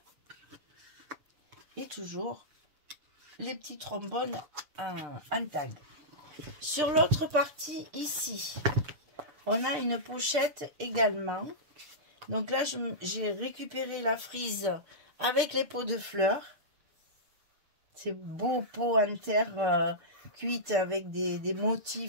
Et toujours les petits trombones en tag. Sur l'autre partie, ici, on a une pochette également. Donc là, j'ai récupéré la frise avec les pots de fleurs. C'est beau pot en terre cuite avec des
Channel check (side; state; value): left; late; 6.7 ms